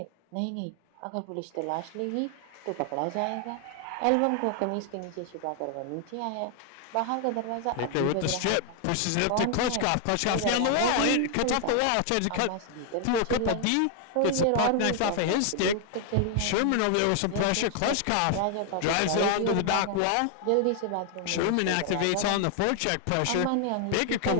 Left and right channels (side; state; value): both; different; correlation 0.00